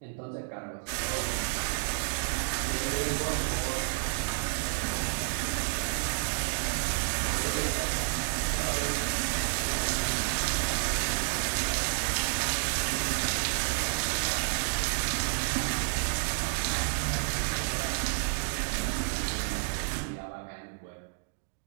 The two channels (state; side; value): silent; left; digital silence